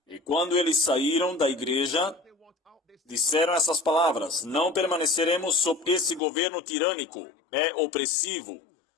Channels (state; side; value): drops out; right; at 6.2 s